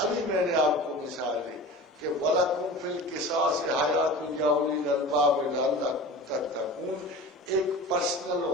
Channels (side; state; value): both; normal; correlation 0.36